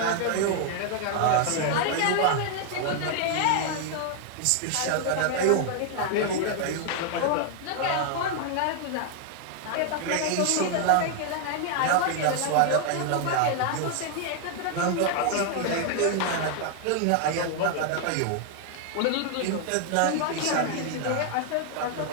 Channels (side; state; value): both; different; correlation 0.00